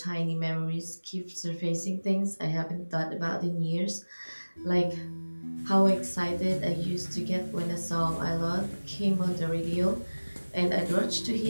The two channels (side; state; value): both; inverted; correlation -1.00